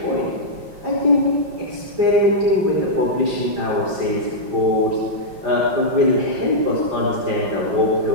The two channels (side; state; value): left; late; 5.7 ms